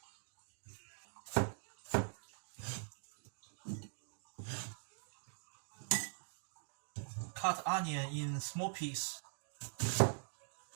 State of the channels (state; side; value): silent; left; digital silence